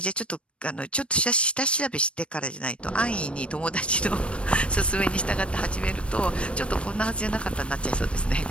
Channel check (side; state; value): right; late; 0.060 ms